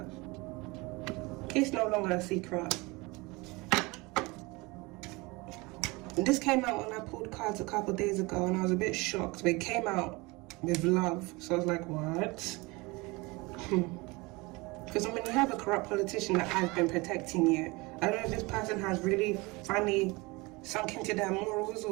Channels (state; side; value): quieter; left; 24.6 dB